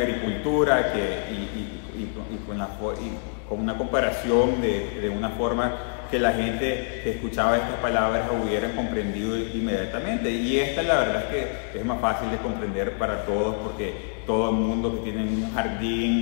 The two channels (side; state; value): right; silent; digital silence